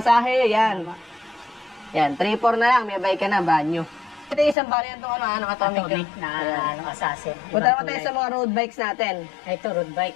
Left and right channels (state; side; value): drops out; right; at 4.5 s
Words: yan. Yan. 3,400 na lang. May bike ka na, banyo. Ito yung isang variant itong atomic na assassin. Punta naman tayo sa mga road bikes natin. Ito, road bike.